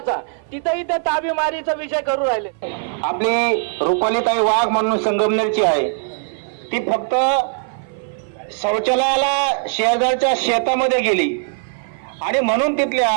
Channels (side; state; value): left; silent; 59 dB below the other